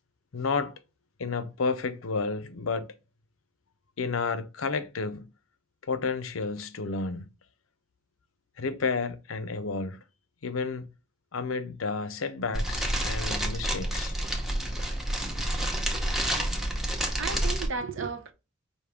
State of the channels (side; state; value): both; normal; correlation 0.26